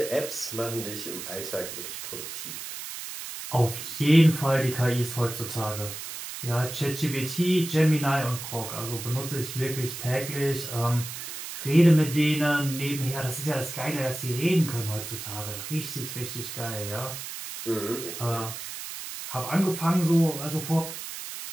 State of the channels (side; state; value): right; noise; hiss, 8 dB below the sound